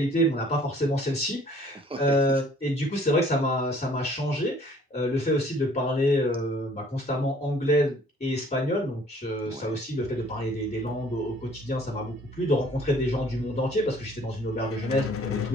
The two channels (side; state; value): both; normal; correlation 0.56